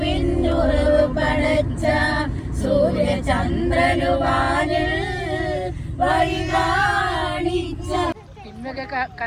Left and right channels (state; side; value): identical; both; correlation 1.00